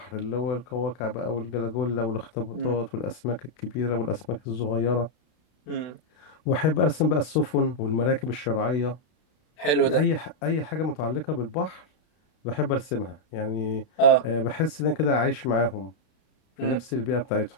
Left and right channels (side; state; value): right; late; 32 ms